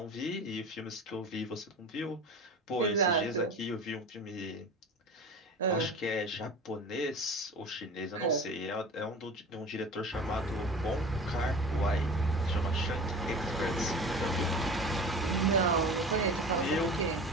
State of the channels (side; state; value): both; normal; correlation 0.36